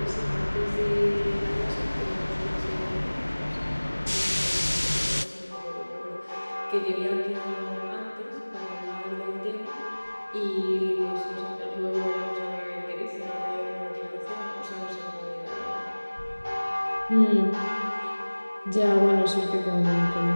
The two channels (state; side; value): inverted; both; correlation -1.00